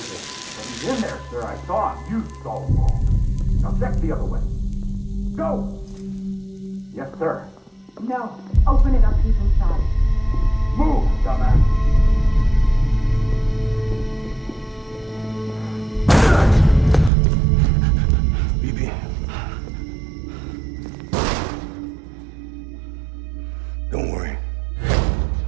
in. But he's in there, sir. I saw him. You saw him wrong. Now check the other way. Go! Yes, sir. No. Open it up. He's inside. Move, dumbass. BB. Don't worry.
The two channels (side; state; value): left; drops out; at 17.1 s